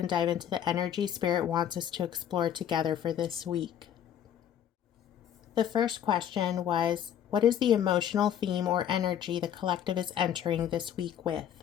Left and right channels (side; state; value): right; quieter; 9.6 dB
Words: dive into the energy Spirit wants us to explore together for this week. The first question was, what is the emotional theme or energy the collective is entering this week